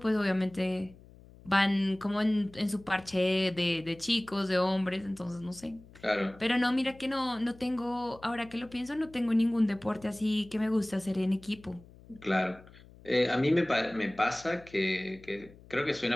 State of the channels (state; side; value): noise; left; hum, 22 dB below the sound